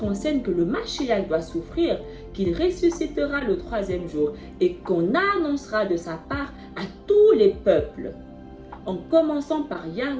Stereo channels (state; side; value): identical; both; correlation 1.00